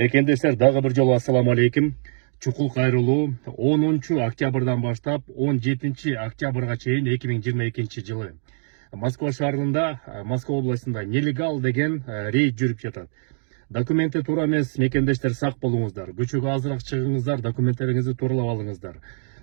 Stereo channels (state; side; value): silent; left; 63 dB below the other